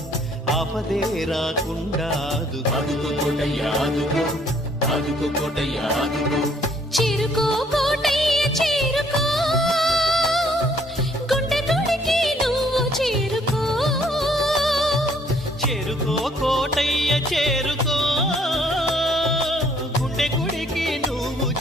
ఆపదే రాకుండా ఆదుకో కోటయ్య ఆదుకో, ఆదుకో కోటయ్య ఆదుకో. చేరుకో కోటయ్య చేరుకో, గుండె గుడికి నువ్వు చేరుకో. చేరుకో కోటయ్య చేరుకో, గుండె గుడికి నువ్వు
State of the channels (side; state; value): both; normal; correlation 0.63